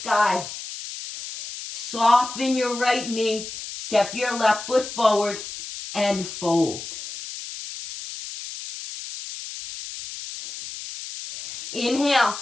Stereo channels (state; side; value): noise; left; hiss, 10 dB below the sound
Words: Soften your right knee. Step your left foot forward and fold. Inhale,